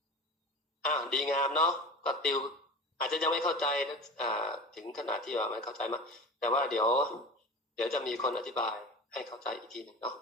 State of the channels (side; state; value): both; normal; correlation 0.34